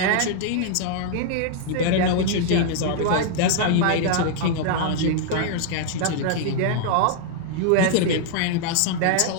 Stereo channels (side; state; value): both; different; correlation 0.00